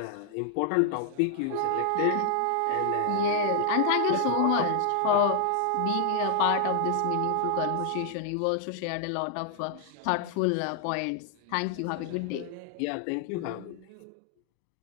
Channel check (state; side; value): different; both; correlation -0.01